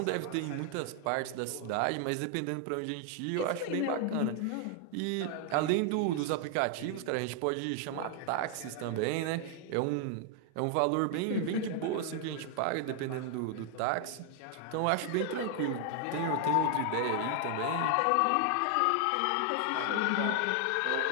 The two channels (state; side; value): different; both; correlation 0.00